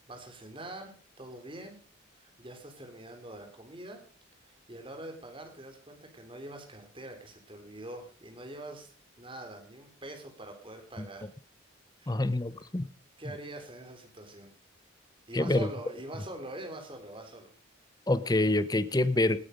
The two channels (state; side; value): normal; both; correlation 0.67